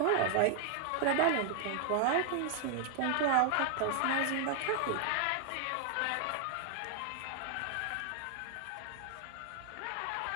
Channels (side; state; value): both; different; correlation 0.00